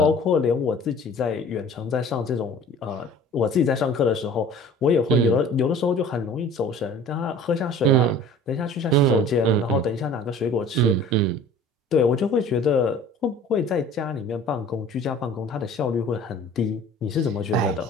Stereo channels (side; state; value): both; normal; correlation 0.46